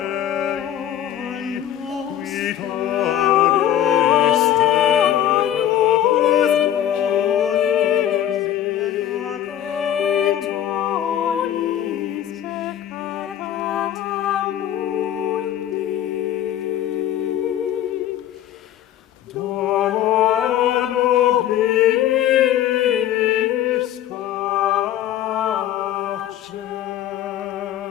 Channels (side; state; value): right; quieter; 11.4 dB